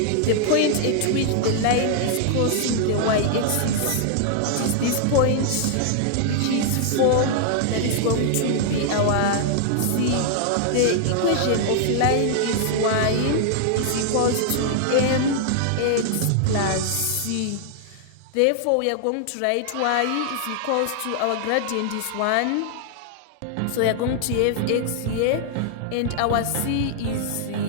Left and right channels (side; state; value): both; different; correlation -0.01